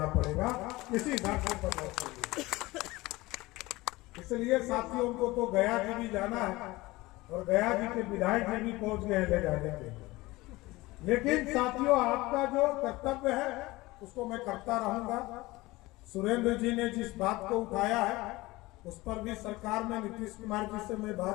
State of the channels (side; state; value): right; quieter; 20.4 dB